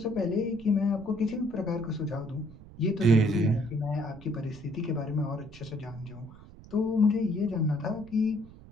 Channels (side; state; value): right; noise; rumble, 19 dB below the sound